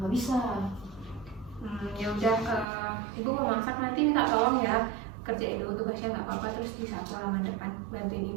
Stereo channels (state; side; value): drops out; left; at 2.7 s